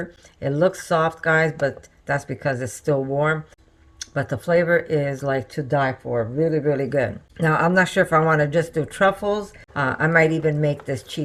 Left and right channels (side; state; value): both; identical; correlation 1.00